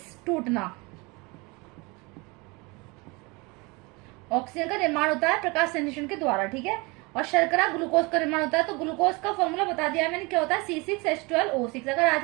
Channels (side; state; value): left; quieter; 26.7 dB